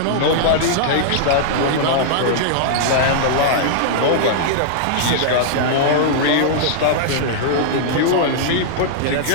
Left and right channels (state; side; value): different; both; correlation -0.01